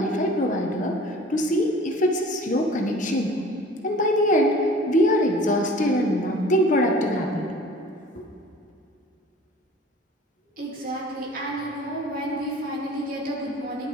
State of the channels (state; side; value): normal; both; correlation 0.46